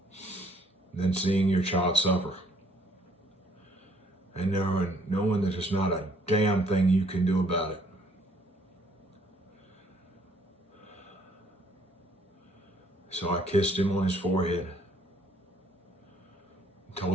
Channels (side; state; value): both; normal; correlation 0.63